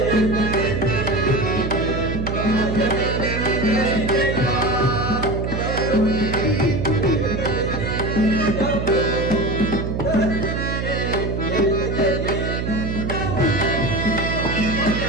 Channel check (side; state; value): right; noise; hum, 2 dB below the sound